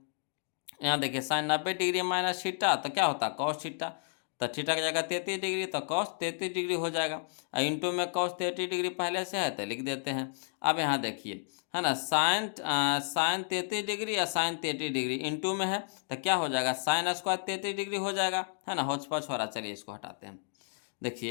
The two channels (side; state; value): right; silent; digital silence